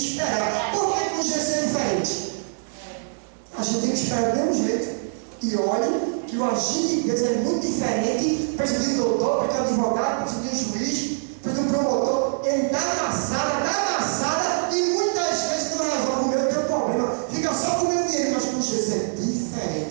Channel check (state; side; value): silent; left; 63 dB below the other